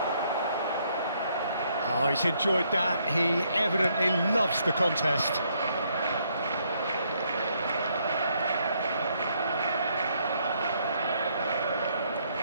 Oh, he's enjoyed that. He evidently loves the contest.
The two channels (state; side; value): inverted; both; correlation -0.71